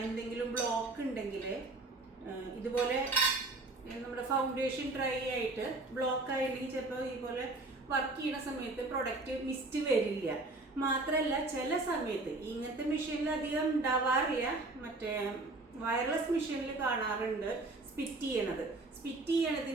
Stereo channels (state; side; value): quieter; left; 3.1 dB